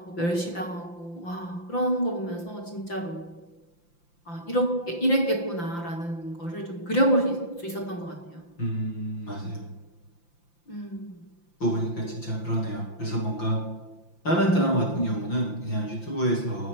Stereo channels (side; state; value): right; late; 5.8 ms